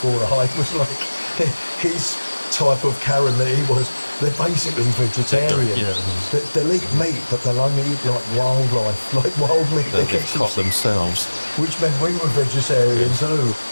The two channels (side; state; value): both; inverted; correlation -1.00